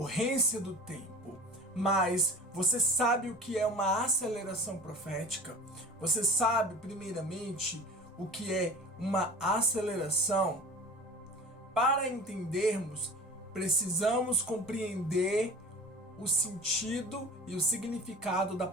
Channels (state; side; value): normal; both; correlation 0.39